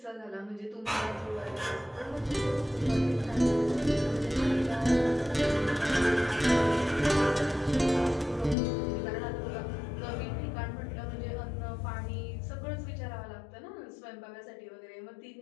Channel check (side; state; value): right; drops out; at 8.6 s